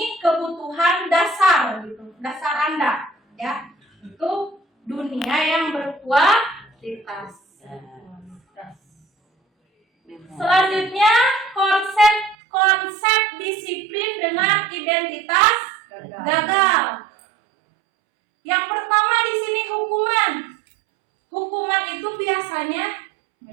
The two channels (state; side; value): drops out; left; at 12.4 s